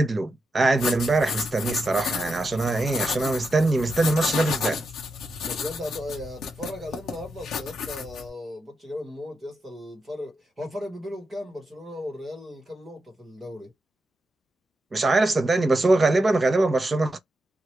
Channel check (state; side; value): normal; both; correlation 0.87